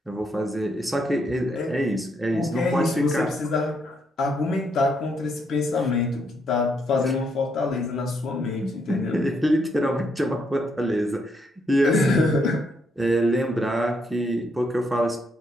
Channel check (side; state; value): both; normal; correlation 0.75